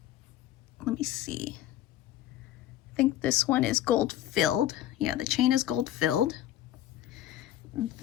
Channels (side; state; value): right; quieter; 12.9 dB